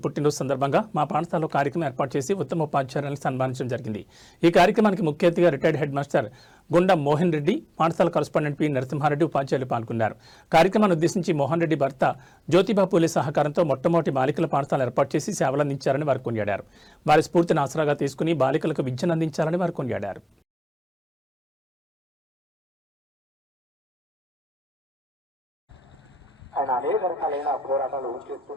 పుట్టినరోజు సందర్భంగా మా పాఠశాలలో కార్యక్రమం ఏర్పాటు చేసి ఉత్తమ ఉపాధ్యాయులను సన్మానించడం జరిగింది. ఈ కార్యక్రమానికి ముఖ్య అతిథిగా రిటైర్డ్ హెడ్ మాస్టర్ గుండం మోహన్ రెడ్డి, పాఠశాల కరస్పాండెంట్ పి నరసింహారెడ్డి ఉపాధ్యాయులు పాల్గొన్నారు. కార్యక్రమాన్ని ఉద్దేశించి మోహన్ రెడ్డి భర్త జ్యోతిబా పూలే సహకారంతో మొట్టమొదటి బాలికల పాఠశాల ఏర్పాటు చేసి సేవలందించారని వారు కొనియాడారు. వారి స్ఫూర్తిని ఆసరాగా తీసుకుని బాలికలకు విద్యను అందించాలని వారు కొనియాడారు. ఆయన అనేక రకాలైన పోరాటాలు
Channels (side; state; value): both; normal; correlation 0.97